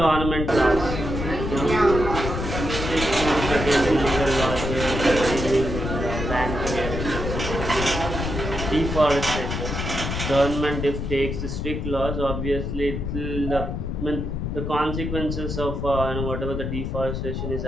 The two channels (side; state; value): left; noise; rumble, 4 dB below the sound